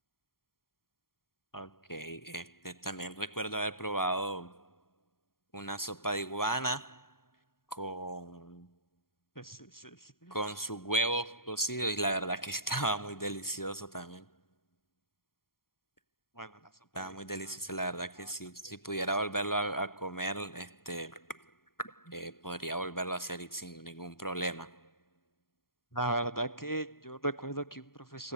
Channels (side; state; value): right; late; 0.92 ms